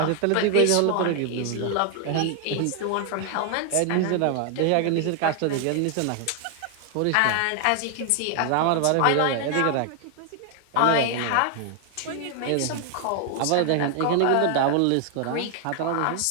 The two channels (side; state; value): both; different; correlation 0.00